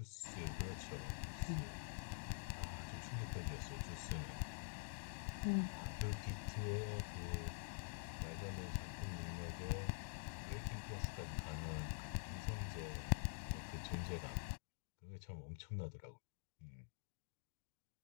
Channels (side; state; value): right; silent; digital silence